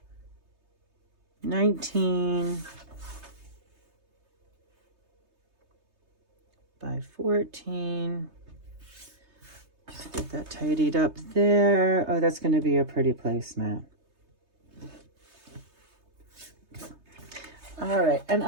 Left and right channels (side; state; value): left; late; 3.3 ms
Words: 19 by 14. Just get that tidied up there. Oh, that's going to be a pretty placemat. All right, and